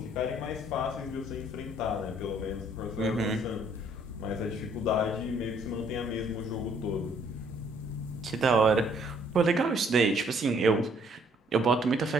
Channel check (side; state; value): both; normal; correlation 0.64